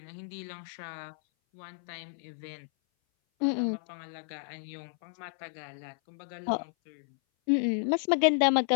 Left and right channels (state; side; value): silent; right; 57 dB below the other